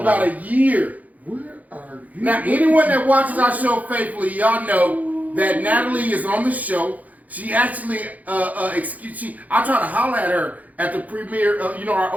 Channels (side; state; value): left; late; 0.077 ms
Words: a year. Where are you? Now, anyone that watches our show faithfully, y'all know that Natalie is on the show. She actually, I try to holler at her at the premiere of, our